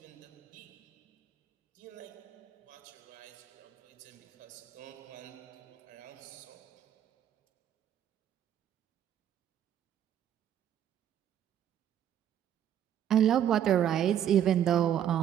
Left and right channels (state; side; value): quieter; left; 10.1 dB